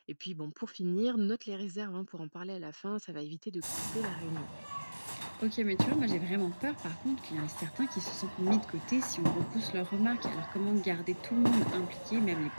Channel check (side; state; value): both; inverted; correlation -1.00